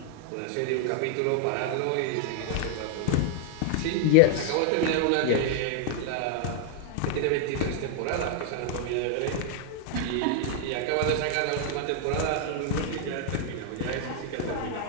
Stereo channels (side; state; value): both; different; correlation 0.00